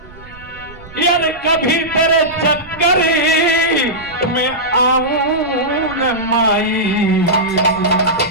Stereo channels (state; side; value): noise; right; rumble, 20 dB below the sound